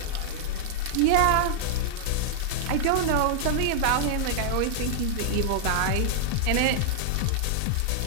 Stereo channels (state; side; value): different; both; correlation -0.01